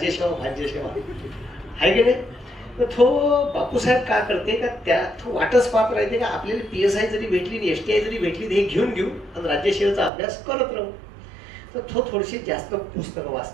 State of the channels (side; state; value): left; drops out; at 10.1 s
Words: भाज्यसेवा आहे की नाही. तर तो बापूसाहेब का करते का त्या तो वाटच पाहत राहते का आपल्याला PSI जरी भेटली STI जरी भेटली हे घेऊन घेऊ आणि राज्यसेवेचा अभ्यास करत राहू. तर तो थोडीशी जास्त पुस्तकं